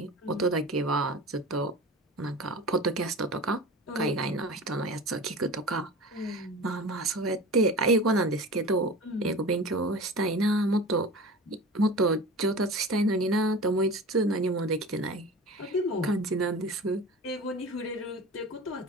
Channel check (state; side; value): normal; both; correlation 0.35